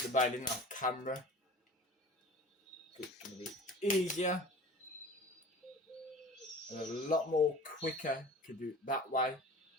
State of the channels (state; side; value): normal; both; correlation 0.41